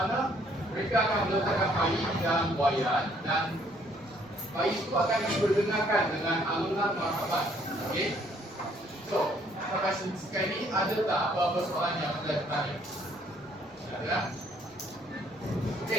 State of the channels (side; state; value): both; normal; correlation 0.64